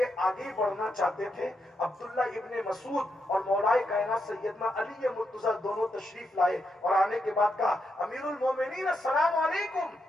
آگے بڑھنا چاہتے تھے. عبداللہ ابن مسعود اور مولائے کائنات سیدنا علی مرتضیٰ دونوں تشریف لائے اور آنے کے بعد کہا امیر المومنین السلام علیکم.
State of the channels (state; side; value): normal; both; correlation 0.82